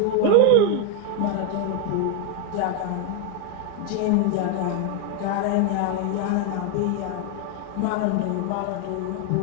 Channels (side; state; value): both; different; correlation 0.01